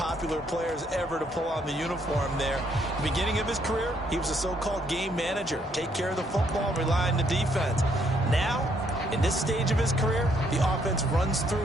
players ever to pull on the uniform there. Beginning of his career, he was a so-called game manager. Take care of the football, rely on the defense. Now, in this stage of his career, the offense runs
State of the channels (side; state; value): both; normal; correlation 0.70